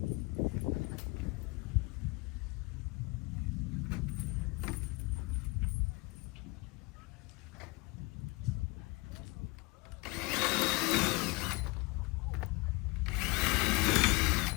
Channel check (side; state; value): right; quieter; 25.9 dB